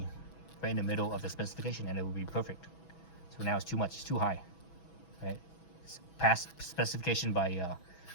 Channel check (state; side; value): late; right; 6.1 ms